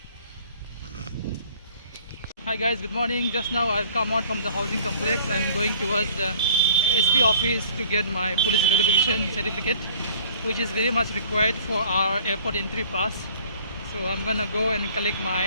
Hi guys, good morning. Just now I've come out from the housing complex. I'm going towards the SP office to get my police verification certificate, which is very much required for our airport entry pass. So I'm gonna go and collect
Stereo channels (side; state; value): both; inverted; correlation -0.53